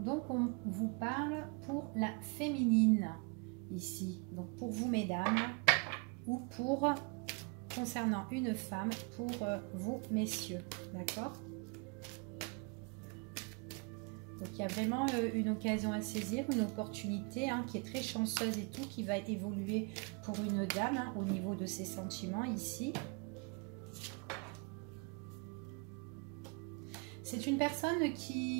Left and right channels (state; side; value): quieter; left; 33.5 dB